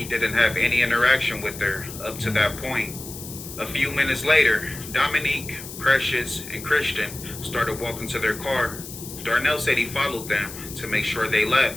didn't have any interaction with her up to that point. A few minutes later, Dominique, Precious, and Christian started walking to their car. Darnell said he followed them to make sure they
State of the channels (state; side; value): noise; left; hiss, 12 dB below the sound